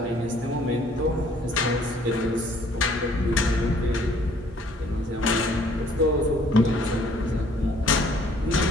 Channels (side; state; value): both; normal; correlation 0.60